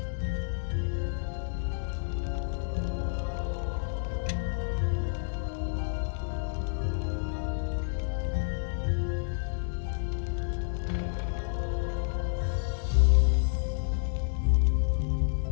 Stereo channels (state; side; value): silent; right; digital silence